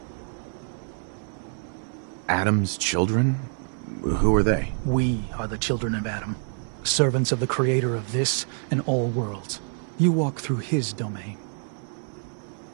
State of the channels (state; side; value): silent; left; 61 dB below the other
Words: Adam's children? Who are they? We are the children of Adam. Servants of the creator of this and all worlds. You walk through his domain.